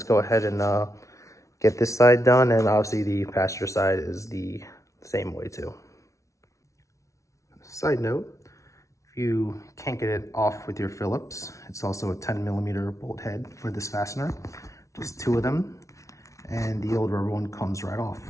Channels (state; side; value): late; right; 0.15 ms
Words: go ahead and get this side done, and obviously the passenger side is the same way too. Side note, if you can't get it off with your Phillips, it's also a 10mm bolt head for this fastener, just 2 of them, and the old rubber one comes right off.